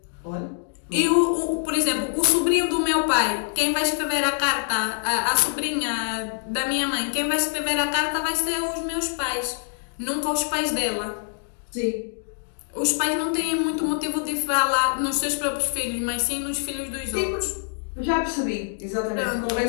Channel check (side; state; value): right; silent; digital silence